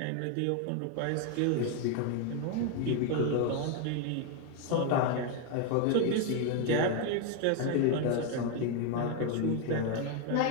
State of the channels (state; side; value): different; both; correlation 0.01